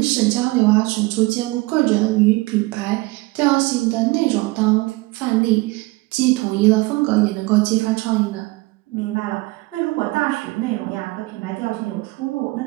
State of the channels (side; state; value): left; quieter; 22.5 dB